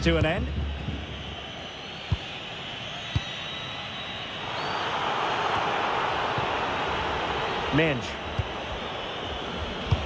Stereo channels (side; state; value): both; identical; correlation 1.00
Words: to an end. Mendes.